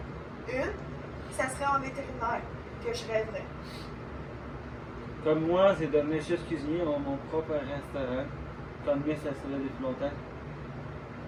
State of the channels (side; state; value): both; identical; correlation 1.00